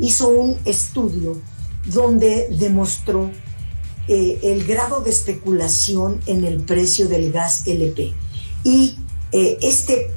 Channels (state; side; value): inverted; both; correlation -1.00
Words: un estudio donde demostró el grado de especulación en el precio del gas LP y este